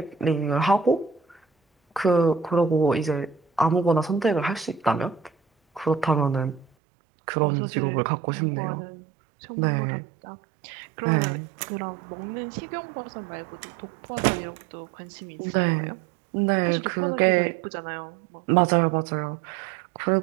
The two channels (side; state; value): left; drops out; at 6.7 s